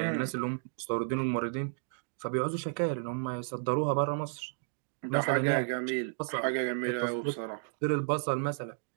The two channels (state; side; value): silent; left; digital silence